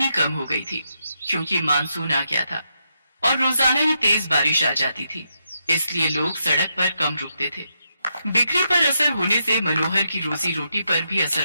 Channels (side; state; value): both; inverted; correlation -0.82